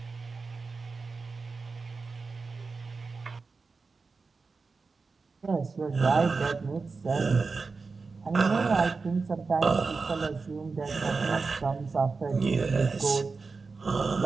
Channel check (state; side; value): quieter; left; 4.4 dB